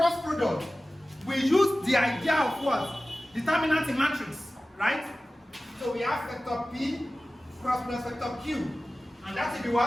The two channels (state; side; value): normal; both; correlation 0.96